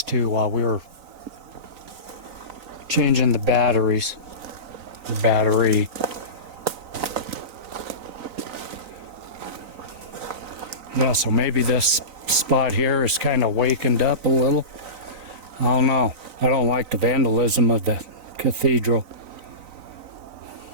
too while we were changing the batteries. The battery. Yeah, so maybe this spot here is kind of wakened up a little. I don't know. I don't like the vandalism of the cathedral.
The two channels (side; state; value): left; late; 3.9 ms